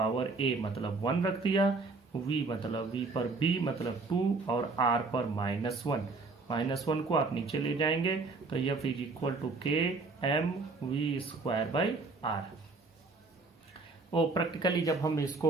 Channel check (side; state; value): left; quieter; 3.8 dB